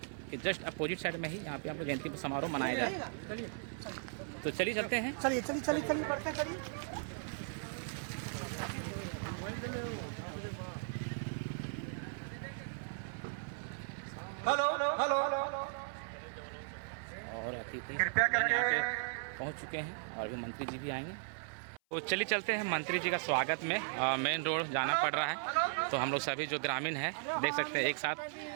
के जस्ट अपोजिट साइड में ही यहाँ पे हम लोग जयंती समारोह मनाया जाए। तो चलिए चलते हैं। चलिए बढ़ते चलिए। हेलो और अतिथि कृपया करके पहुंच चुके हैं और अभी मंत्री जी भी आएंगे। तो चलिए चलते हैं मंत्री जी का स्वागत में। मेन रोड जाना पड़ रहा है, तो हम लोग सभी जो ग्रामीण हैं देख सकते हैं एक साथ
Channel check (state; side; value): silent; left; 53 dB below the other